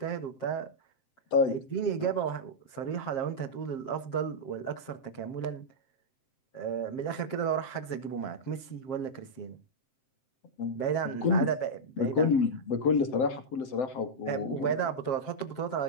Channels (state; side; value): late; right; 7.5 ms